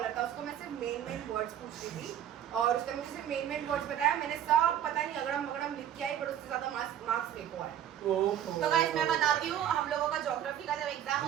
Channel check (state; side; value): quieter; left; 10.6 dB